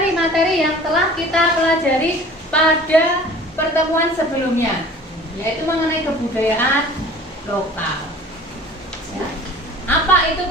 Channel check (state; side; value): normal; both; correlation 0.45